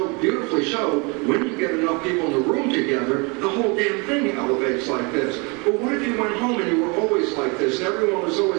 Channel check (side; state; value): left; quieter; 30.2 dB